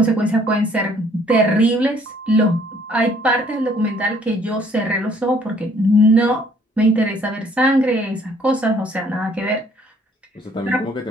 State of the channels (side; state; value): both; normal; correlation 0.61